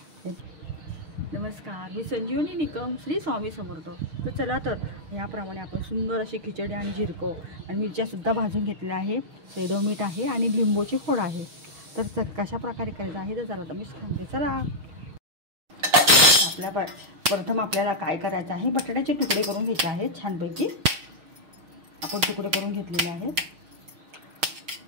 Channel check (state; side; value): late; left; 6.4 ms